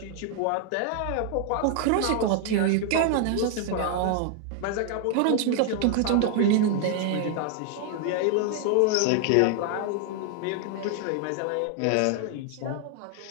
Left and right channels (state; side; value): different; both; correlation 0.00